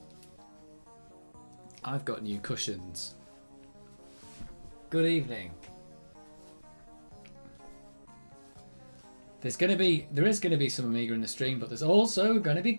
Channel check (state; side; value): inverted; both; correlation -1.00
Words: I've got new cushions. Good evening. There is going to be some Amiga in the stream, but there's also going to be